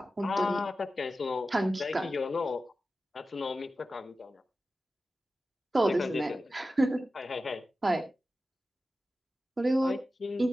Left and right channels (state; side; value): normal; both; correlation 0.93